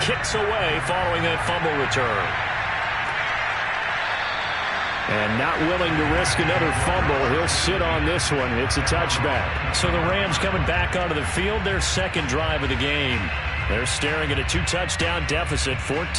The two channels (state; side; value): identical; both; correlation 1.00